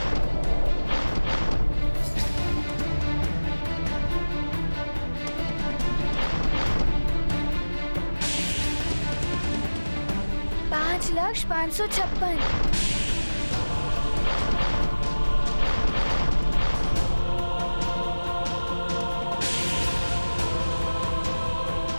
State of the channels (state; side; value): inverted; both; correlation -1.00